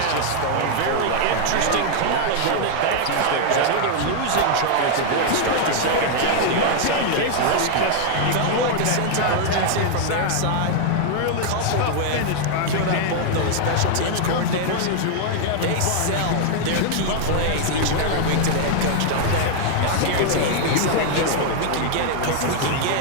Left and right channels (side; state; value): both; different; correlation 0.00